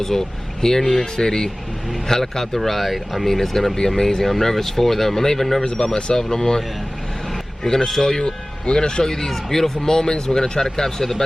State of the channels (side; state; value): both; normal; correlation 0.98